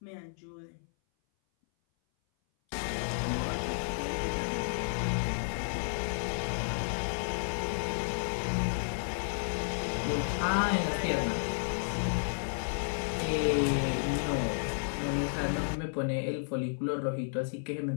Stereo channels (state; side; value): silent; right; 56 dB below the other